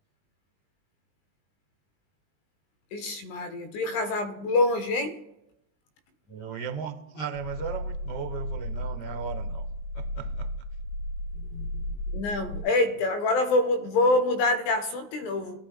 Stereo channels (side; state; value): right; late; 20 ms